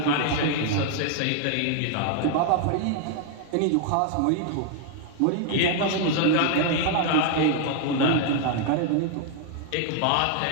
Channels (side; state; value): both; different; correlation 0.00